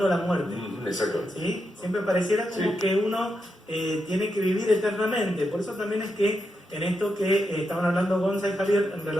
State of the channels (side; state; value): both; normal; correlation 0.85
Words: la muerte. Exacto. ¿Sí? Siempre pareciera como que uno tiene que vivir eternamente. Por eso también es que en esto que estaban hablando Gonza y Javier en